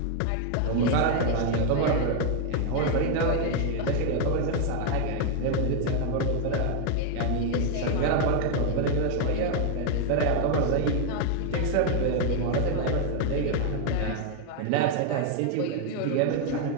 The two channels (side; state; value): both; different; correlation 0.01